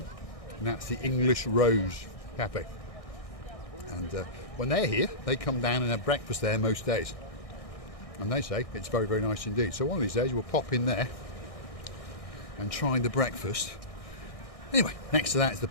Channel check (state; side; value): late; right; 1.6 ms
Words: and that's the English Rose Cafe. And when they're here, they come down and have breakfast there most days, and they say it's very, very nice indeed. So one of these days we'll pop in there and try the breakfast. Anyway, next to that is the